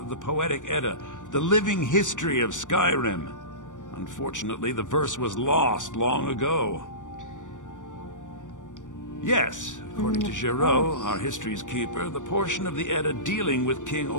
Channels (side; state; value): right; late; 0.87 ms